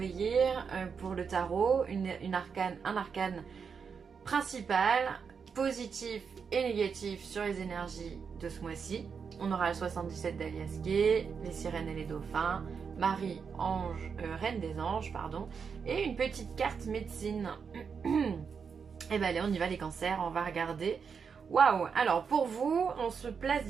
Year pour le tarot, un arcane principal, positif et négatif sur les énergies de ce mois-ci. On aura le 77 d'Alias Gay, les sirènes et les dauphins, Marie, ange, reine des anges, pardon, et une petite carte médecine. Et ben allez, on y va les cancers, on va regarder. Waouh! Alors pour vous, on se place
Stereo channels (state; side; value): quieter; left; 6.1 dB